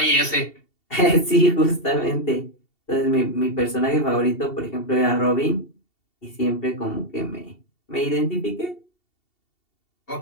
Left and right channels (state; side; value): late; right; 2.7 ms